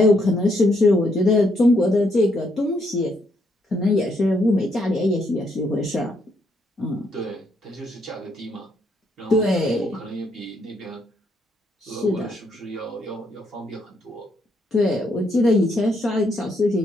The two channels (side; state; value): both; normal; correlation 0.74